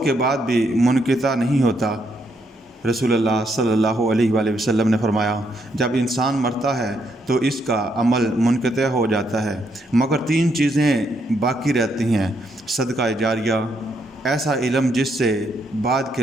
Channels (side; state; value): both; normal; correlation 0.76